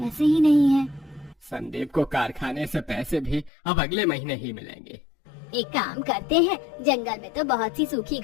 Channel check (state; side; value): drops out; right; at 3.5 s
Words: ही नहीं है। संदीप को कारखाने से पैसे भी अब अगले महीने ही मिलेंगे। एक काम करते हैं, जंगल में तो बहुत सी सूखी